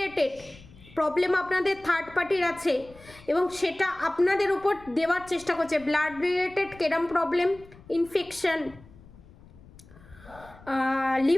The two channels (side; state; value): left; noise; rumble, 22 dB below the sound